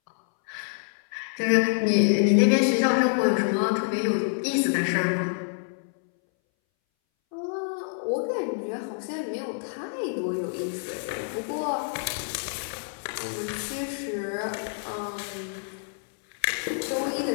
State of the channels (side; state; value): right; silent; 60 dB below the other